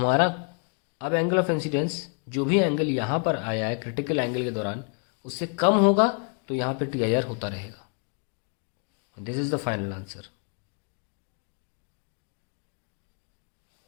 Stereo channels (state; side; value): quieter; right; 39.2 dB